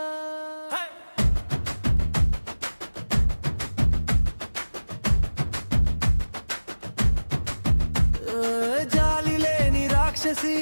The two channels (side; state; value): both; inverted; correlation -1.00